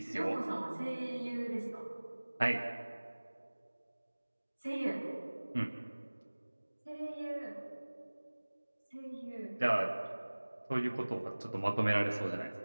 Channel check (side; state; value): both; inverted; correlation -1.00